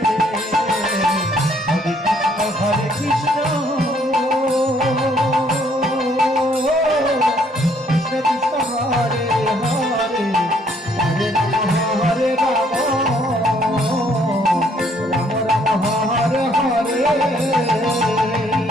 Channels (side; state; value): both; normal; correlation 0.65